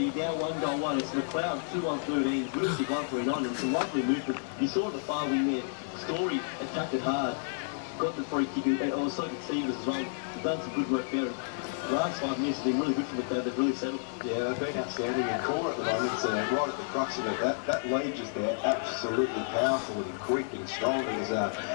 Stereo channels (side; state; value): right; silent; digital silence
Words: now 1-1. It's Macleod 2-1-13, Whittlesea 1-3-9, and some lovely movement. You saw the far wing there. Story attacked it hard. Got the free kick, and also could Stevens as well. They've done some good work there. The last 5 minutes have been really good for Macleod. They've really settled. Yeah, they've been outstanding in core at the moment, so right at the crux of it. That lead just there, absolutely powerful and quick and strong. He